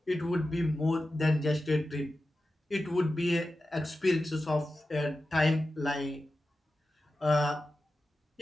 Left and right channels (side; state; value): both; normal; correlation 0.93